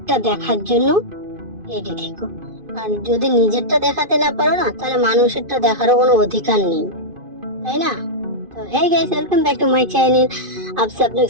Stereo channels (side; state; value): left; late; 2.5 ms